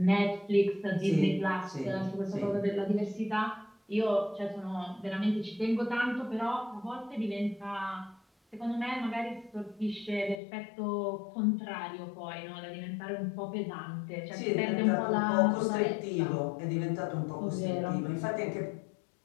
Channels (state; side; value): drops out; right; at 10.4 s